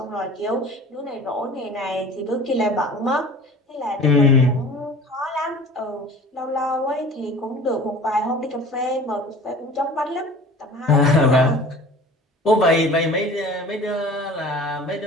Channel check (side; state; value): both; normal; correlation 0.42